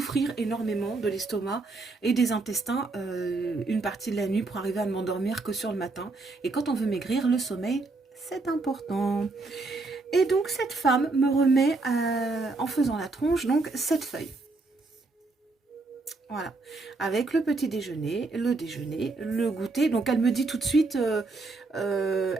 énormément de l'estomac et des intestins une partie de la nuit pour arriver à ne m'endormir que sur le matin. Et quand on veut maigrir, le sommeil, c'est important. Et donc cette femme me remet, en faisant la tronche, donc cette feuille. Voilà, avec le petit déjeuner, le goûter. Donc elle me dit tout de suite, le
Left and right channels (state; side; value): quieter; left; 3.5 dB